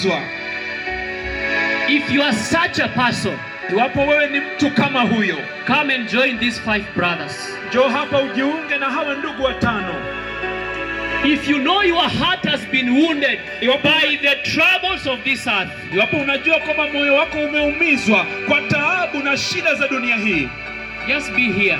If you are such a person, iwapo wewe ni mtu kama huyo, come and join these 5 brothers. Njoo hapa ujiunge na hawa ndugu watano. If you know your heart has been wounded by the troubles of this earth, iwapo unajua kwamba moyo wako umeumizwa kwa taabu na shida za dunia hii, just be here.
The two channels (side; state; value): both; identical; correlation 1.00